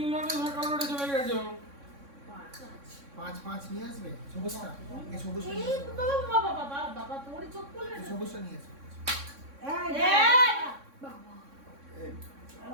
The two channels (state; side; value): late; left; 3.6 ms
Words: সরকার রোডে চলে গেছো। পাঁচ পাঁচ নিয়ে আসবে সবুজটা এই সবুজটা নিয়ে এই আসবে। বাবা বাবা বাবা বাবা তোর চোখ খুলবে এই না সবুজটা নিয়ে আসবে এই এই বাবা এই